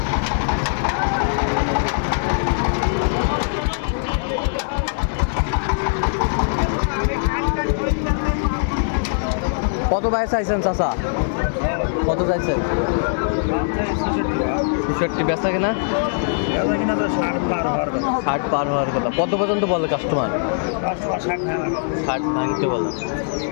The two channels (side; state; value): right; silent; digital silence